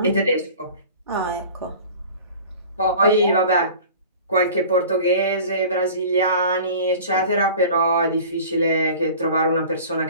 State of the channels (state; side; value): inverted; both; correlation -0.42